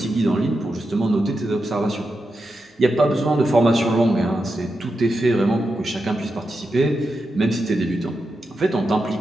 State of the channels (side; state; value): both; normal; correlation 0.88